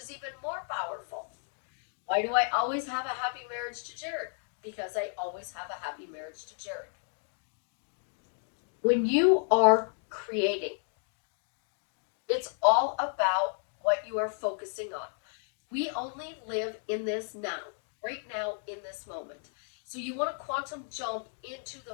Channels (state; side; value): silent; right; 56 dB below the other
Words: even more powerful. Why do I always have a happy marriage to Jared? Because I always have a happy marriage to Jared. When you are creating, it's all about what you are focusing on. We only live in this now, right now in this moment. So you want to quantum jump into